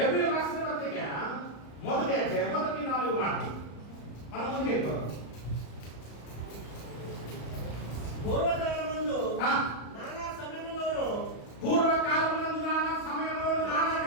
రాసిన పత్రిక మొదటి 4 మాటలు మనం ముందుకు వెళ్ళిపోతాం. పూర్వకాలమందు నానా సమయంలోను నానా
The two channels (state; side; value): late; right; 35 ms